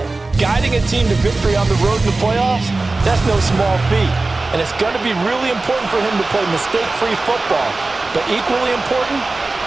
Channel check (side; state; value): left; quieter; 3.3 dB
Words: Guiding a team to victory on the road in the playoffs, that's no small feat. And it's going to be really important for him to play mistake-free football. But equally important,